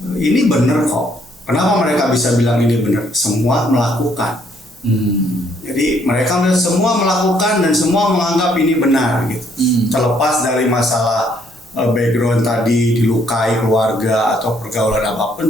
ini benar kok. Kenapa mereka bisa bilang ini benar? Semua melakukan. Jadi mereka semua melakukan dan semua menganggap ini benar gitu. Terlepas dari masalah background tadi, dilukai keluarga atau pergaulan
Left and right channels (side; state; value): both; normal; correlation 0.68